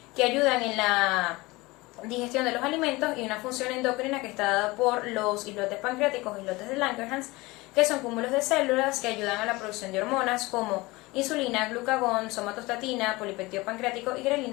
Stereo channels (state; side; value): quieter; right; 22.1 dB